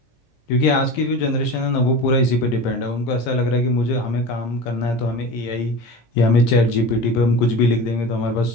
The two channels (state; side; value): late; right; 17 ms